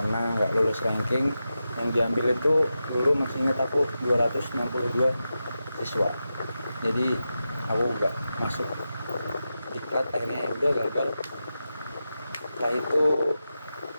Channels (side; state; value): both; inverted; correlation -0.91